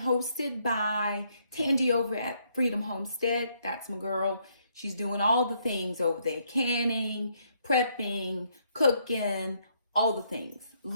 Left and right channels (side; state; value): both; inverted; correlation -0.72